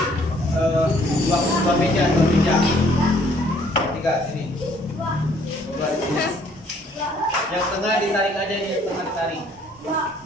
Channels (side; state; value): both; normal; correlation 0.62